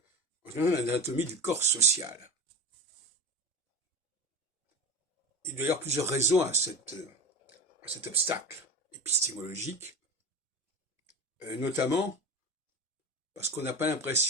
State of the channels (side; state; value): both; normal; correlation 0.30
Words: en l'anatomie du corps social. Il y a d'ailleurs plusieurs raisons à cet obstacle épistémologique, notamment parce qu'on n'a pas